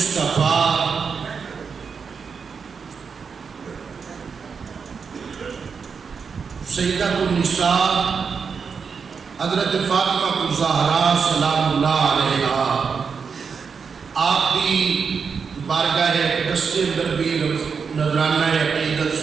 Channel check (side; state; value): left; quieter; 5.8 dB